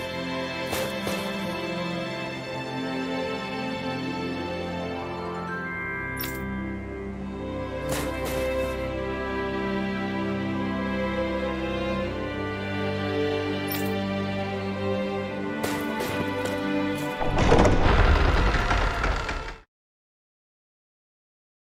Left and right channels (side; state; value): both; identical; correlation 1.00